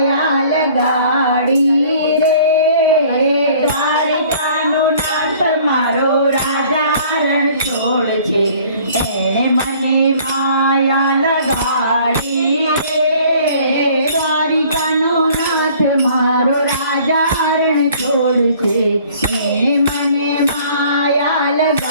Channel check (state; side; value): inverted; both; correlation -0.54